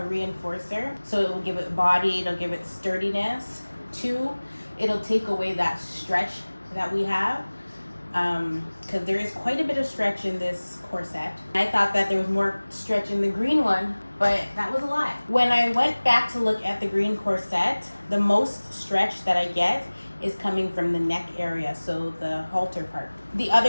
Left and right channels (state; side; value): inverted; both; correlation -1.00